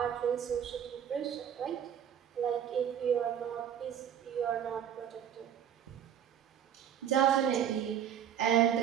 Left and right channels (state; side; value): quieter; left; 9.3 dB